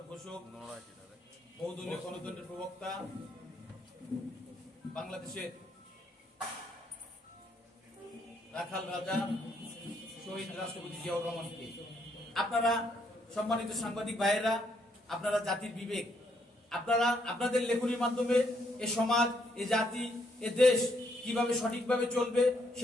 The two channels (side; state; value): both; normal; correlation 0.73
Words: ঘোষক, বহুদলীয় গণতন্ত্রের প্রবক্তা, বাংলাদেশের রাখাল রাজা শহীদ রাষ্ট্রপতি জিয়াউর রহমানকে। আপনারা সম্মানিত সাংবাদিক ভাইয়েরা, আপনারা জাতির বিবেক, আপনারা আপনাদের লেখনীর মাধ্যমে এ সমাজ, এ জাতি, এ দেশ কিভাবে সঠিকভাবে চলবে